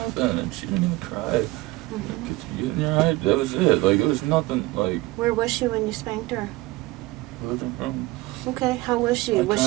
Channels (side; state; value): left; quieter; 20.1 dB